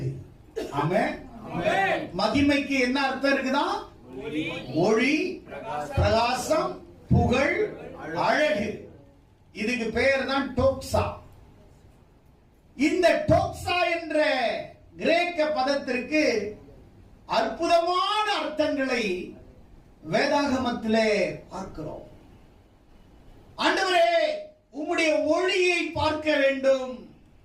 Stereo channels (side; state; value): both; identical; correlation 1.00